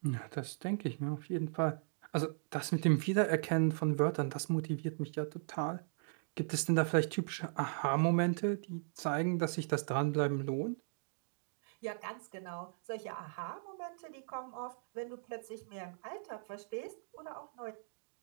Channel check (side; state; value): left; silent; digital silence